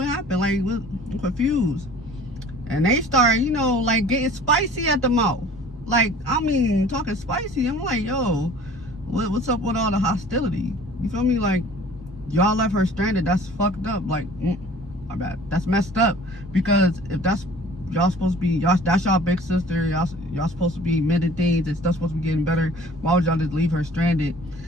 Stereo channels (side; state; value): both; normal; correlation 0.48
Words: happened? Like, I'm confused. And they start, like getting spicy at the mouth. Like, I mean, talking spicy. I'm like, yo, what's up with all the hostility? You feel me? Like, y'all left her stranded. That's fucked up. Like, my bad. That's messed up. Because if that's y'all supposed to be, that's y'all big sister. Y'all supposed to be mending things and stuff supposed to be getting better. Why would y'all just leave her stranded?